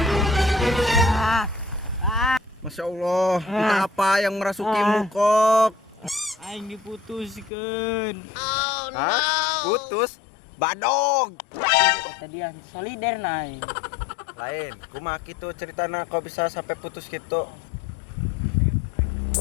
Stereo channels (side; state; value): right; drops out; at 7.5 s